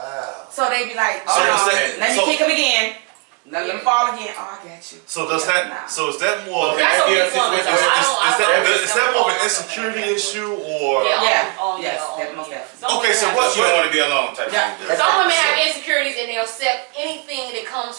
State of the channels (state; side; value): quieter; left; 30.9 dB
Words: So they be like, So oh is no, that- let me so- kick him again. Let him fall again. Oh, I got you. So does Yeah, that? nah. So is that more? Okay. That's a Yeah, weak situation- woman, though. is- Is that more of an insecurity issue or? Yeah. Oh, Yes, yeah. that most definitely. Some Okay, women so have- what- She don't want to be alone type Yeah. of thing. Some women have insecurities and they'll accept anything that